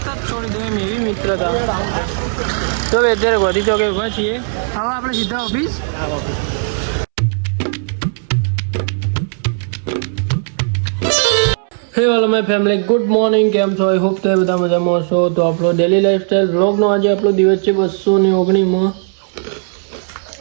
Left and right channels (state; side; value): silent; left; 69 dB below the other